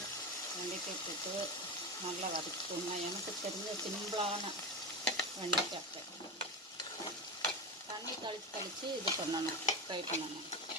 வெண்டைக்காய் போட்டு நல்லா வதக்கிக்கோங்க. எனக்கு தெரிஞ்ச சிம்பிளான வெண்டைக்காய் தண்ணி கழித்து இது பண்ணணும், ஃப்ரை பண்ணணும்.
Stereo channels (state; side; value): normal; both; correlation 0.20